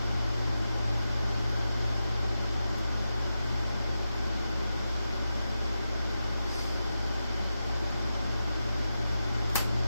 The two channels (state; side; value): inverted; both; correlation -0.90